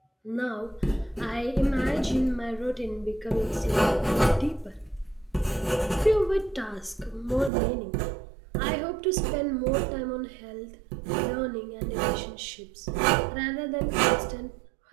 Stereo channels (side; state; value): left; drops out; at 7.5 s